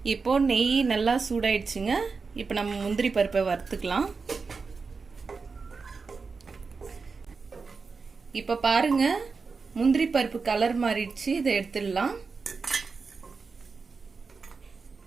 இப்போ நெய் நல்லா சூடாயிடுச்சுங்க. இப்போ நம்ம முந்திரி பருப்பை வறுத்துக்கலாம். இப்போ பாருங்க, முந்திரி பருப்பு கலர் மாறிடுச்சு. இதை எடுத்துடலாம்.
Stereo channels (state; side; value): quieter; left; 4.7 dB